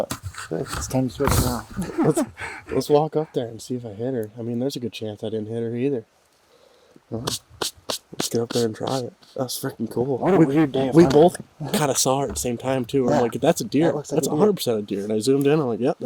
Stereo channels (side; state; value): both; identical; correlation 1.00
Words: it's time to switch now. Let's walk up there and see if I hit her. I mean, there's a good chance I didn't hit her either. Well, let's get up there and try it. That's freaking cool. What a weird day of We hunting. both kind of saw it at the same time too. Yeah. I'm like, that's a deer. That looks like That's a deer. 100% a deer. And I zoomed in. I'm like, yep,